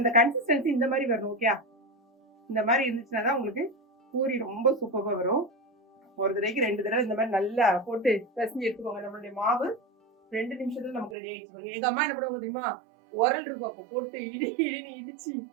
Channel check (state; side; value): drops out; left; at 11.2 s